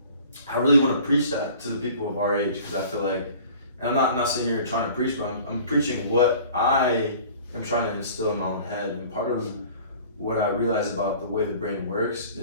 I really want to preach that to the people of our age, because I feel like, and I'm not sitting here trying to preach, but I'm preaching what I am trying to instill in my own head. And part of what I realize about the way the brain works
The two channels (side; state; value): both; inverted; correlation -0.47